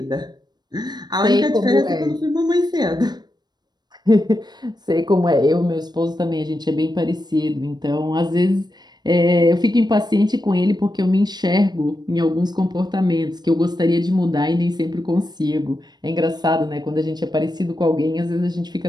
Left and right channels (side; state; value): left; late; 0.20 ms